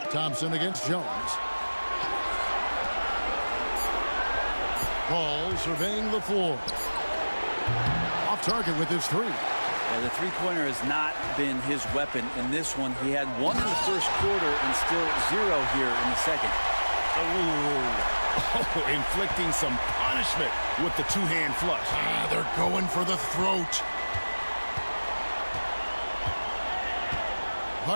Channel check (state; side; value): inverted; both; correlation -1.00